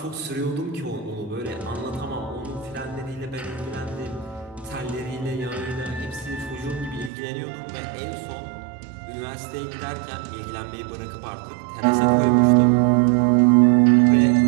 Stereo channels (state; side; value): drops out; left; at 7.1 s